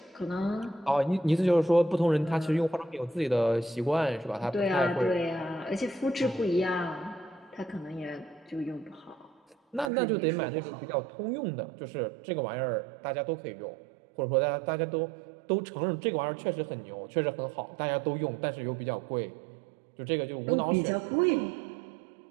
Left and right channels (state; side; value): drops out; left; at 9.9 s